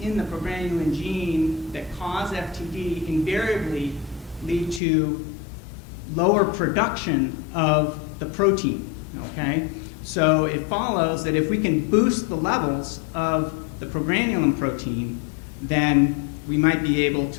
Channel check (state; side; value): drops out; right; at 4.8 s